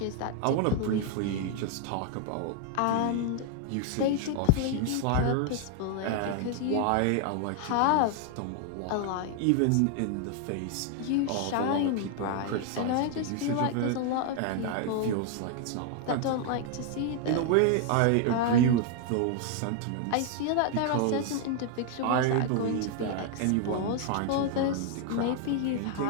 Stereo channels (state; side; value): different; both; correlation 0.00